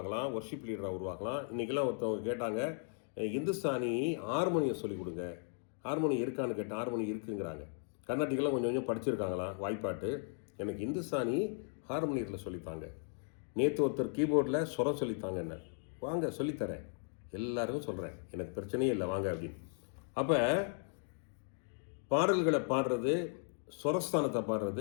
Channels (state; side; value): silent; right; 53 dB below the other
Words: ஒர்ஷிப் லீடராக உருவாகலாம். இன்றைக்கெல்லாம் ஒருத்தவங்க கேட்டாங்க, இந்துஸ்தானி ஹார்மோனியம் சொல்லிக் கொடுங்க. ஹார்மோனியம் இருக்கான்னு கேட்டால் ஹார்மோனியம் இருக்குங்கிறாங்க. கர்நாட்டிக்கெல்லாம் கொஞ்சம் கொஞ்சம் படிச்சிருக்காங்களாம் வாய்ப்பாட்டு. எனக்கு இந்துஸ்தானி ஹார்மோனியத்தில் சொல்லித்தாங்க. நேற்று ஒருத்தர் கீபோர்டில் சுரம் சொல்லித்தாங்க. என்ன வாங்க சொல்லித்தரேன், எல்லாருக்கும் சொல்கிறேன், எனக்கு பிரச்சனையே இல்லை வாங்க அப்படின்னு. அப்போ பாடல்களை பாடுறது, ஸ்வரஸ்தானத்தை